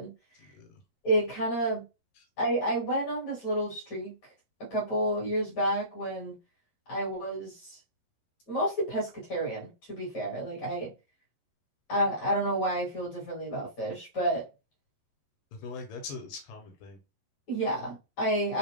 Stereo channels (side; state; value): right; late; 11 ms